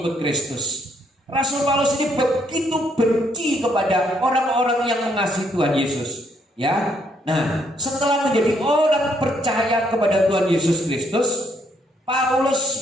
Kristus. Rasul Paulus ini begitu benci kepada orang-orang yang mengasihi Tuhan Yesus. Ya, nah setelah menjadi orang percaya kepada Tuhan Yesus Kristus,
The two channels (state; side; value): normal; both; correlation 0.71